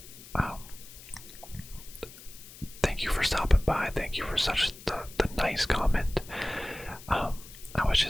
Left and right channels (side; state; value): left; noise; hiss, 17 dB below the sound